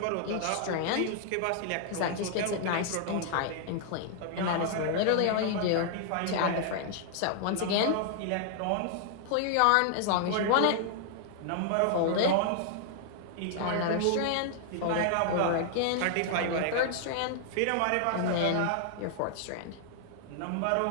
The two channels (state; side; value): different; both; correlation 0.00